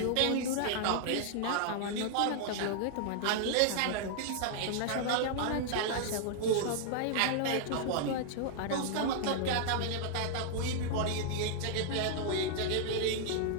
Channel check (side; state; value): both; different; correlation -0.01